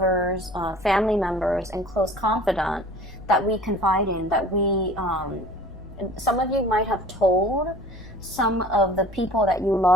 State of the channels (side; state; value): left; noise; rumble, 18 dB below the sound